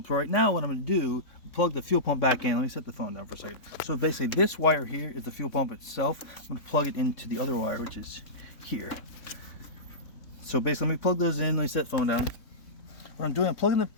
So right now what I'm going to do, plug the fuel pump back in. Let me set the phone down for a second. So basically this wire here is the fuel pump itself. I'm going to plug it into the other wire, which is here. So basically let me plug those in. Let me set the phone down. What I'm doing, I'm plugging the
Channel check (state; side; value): late; right; 3.6 ms